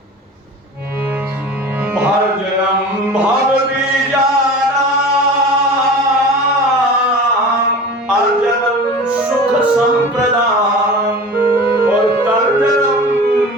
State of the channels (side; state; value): both; normal; correlation 0.37